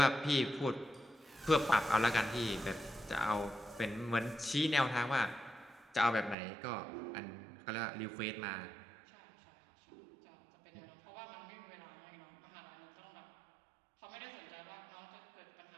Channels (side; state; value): left; drops out; at 6.4 s